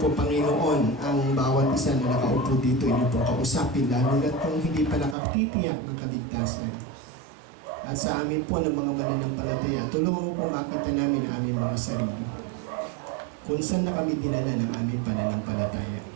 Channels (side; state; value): left; drops out; at 5.2 s